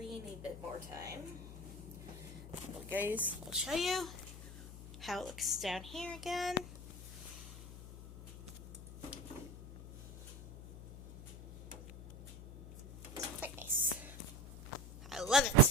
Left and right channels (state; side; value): noise; left; hum, 13 dB below the sound